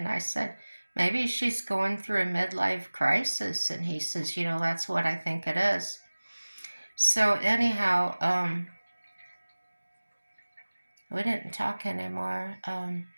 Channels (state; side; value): inverted; both; correlation -1.00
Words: I said, maybe she's going through a midlife crisis. And he says, that's what I think it is. So anyhow, we didn't talk anymore.